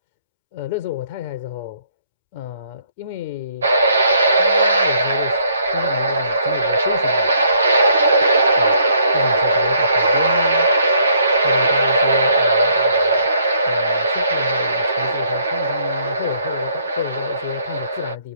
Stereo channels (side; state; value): both; inverted; correlation -0.66